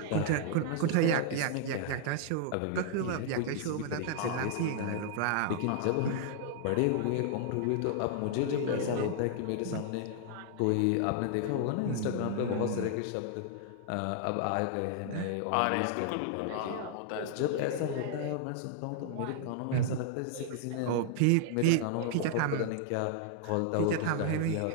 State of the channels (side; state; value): both; different; correlation -0.01